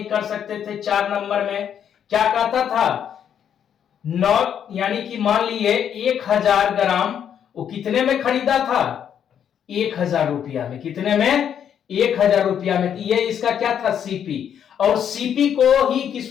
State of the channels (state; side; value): quieter; right; 8.8 dB